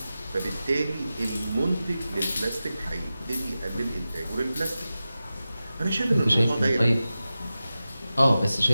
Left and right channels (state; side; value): inverted; both; correlation -0.94